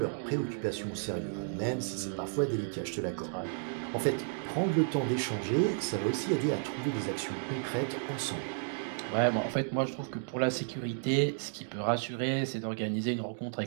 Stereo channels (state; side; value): silent; left; digital silence